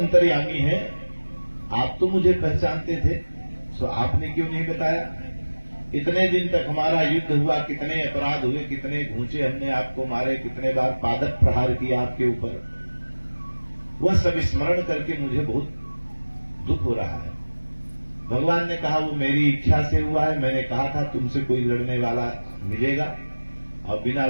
हैं, आप तो मुझे पहचानते थे, तो आपने क्यों नहीं बताया? इतने दिन तक हमारा युद्ध हुआ, कितने अपराध हुए, कितने घूंचे हमने आपको मारे, कितने बार पादप प्रहार किया आपके ऊपर, वह सब स्मरण करके मुझे बहुत दुख हो रहा है। भगवान ने कहा वो मेरी इच्छा से हुआ है, मैंने कहा था तुमसे कोई लड़ने वाला मिलेगा और बिना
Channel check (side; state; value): both; inverted; correlation -1.00